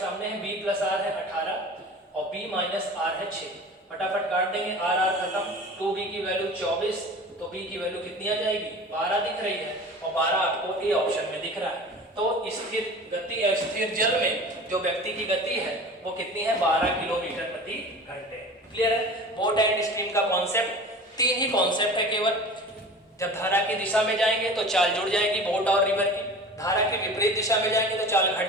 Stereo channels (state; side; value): normal; both; correlation 0.38